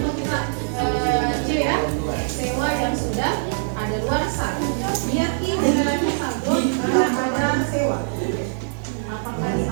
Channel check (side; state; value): left; silent; digital silence